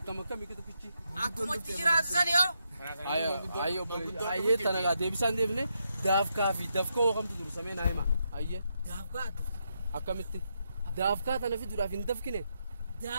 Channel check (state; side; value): inverted; both; correlation -0.81